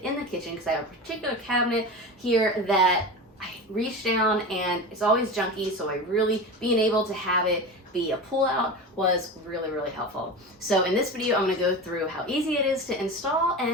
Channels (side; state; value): both; normal; correlation 0.27